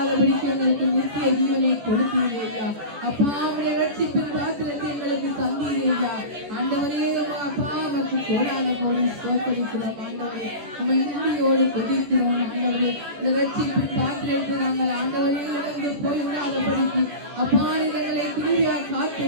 எங்களுக்கு நித்திய ஜீவனை கொடுத்தீர்கள் ஐயா. அப்பா உடைய ரட்சிப்பின் பாத்திரத்தை எங்களுக்கு தந்தீர்கள் ஐயா. ஆண்டவரே அப்பா உமக்கு கோடான கோடி ஸ்தோத்திரிக்கிறோம் ஆண்டவரே. உம்மை நன்றியோடு துதிக்கிறோம் ஆண்டவரே. இந்த ரட்சிப்பின் பாத்திரத்தை நாங்கள் ஆண்டவரே இழந்து போய்விடாதபடிக்கு அப்பா எங்களை கிருபையாய் காத்து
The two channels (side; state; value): left; late; 14 ms